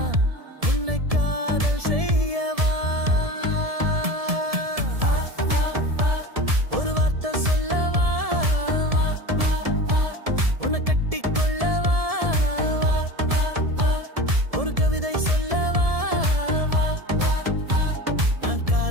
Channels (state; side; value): late; left; 1.7 ms